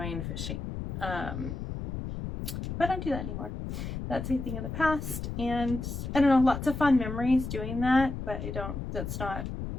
fishing. But I don't do that anymore. That's a thing of the past, and I don't know, lots of fun memories doing that, but that's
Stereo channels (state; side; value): noise; left; rumble, 5 dB below the sound